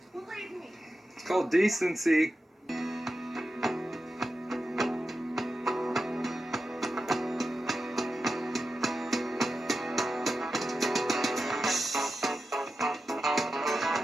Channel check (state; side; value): normal; both; correlation 0.90